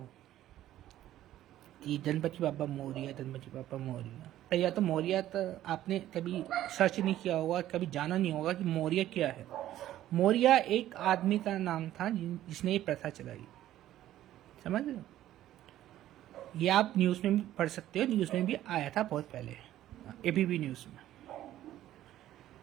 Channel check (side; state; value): left; quieter; 13.2 dB